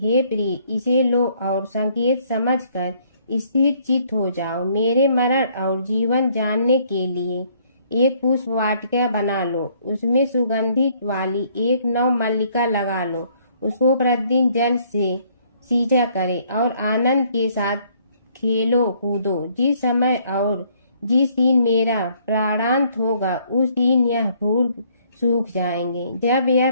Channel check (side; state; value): both; inverted; correlation -0.64